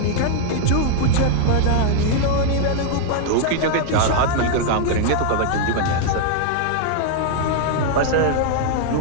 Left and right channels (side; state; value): both; different; correlation 0.00